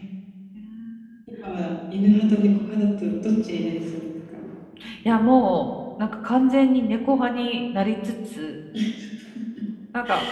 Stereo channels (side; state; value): both; identical; correlation 1.00